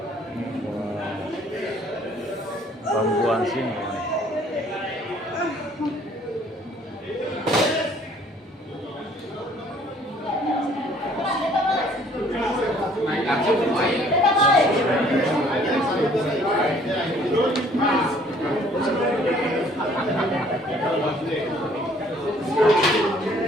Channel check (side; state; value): both; normal; correlation 0.59